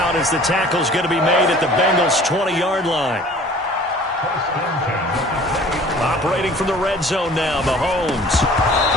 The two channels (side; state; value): both; normal; correlation 0.49